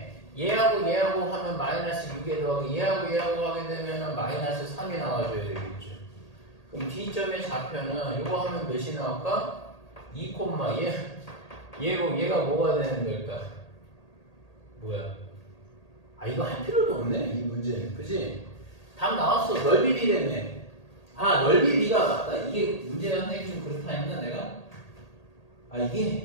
얘하고 얘하고 하면 마이너스 6에 더하기 얘하고 얘하고 하게 되면 마이너스 3이 나와줘야 되겠죠. 그럼 D점의 좌표는 이거 하면 몇이 나올까? 2, 얘가 뭐가 되는 걸까? 뭐야? 아 이거 할 필요도 없네 이 문제는. 그지? 답 나왔어. 넓이 비례네. 아 넓이 비가 맞다. 이게 문제가 선생님 좀 그렇다 했나 내가? 아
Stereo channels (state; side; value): late; right; 1.8 ms